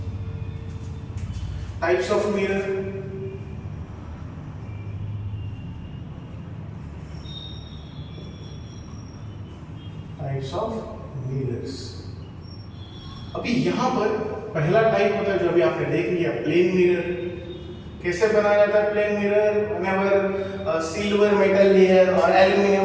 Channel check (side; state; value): both; identical; correlation 1.00